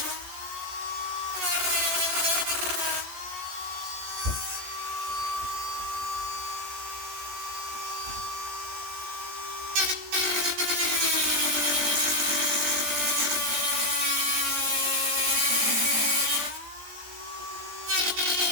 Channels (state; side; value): late; left; 14 ms